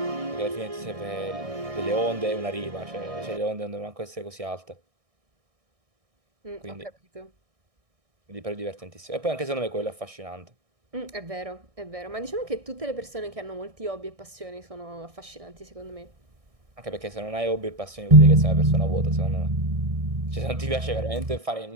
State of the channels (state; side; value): late; left; 1.6 ms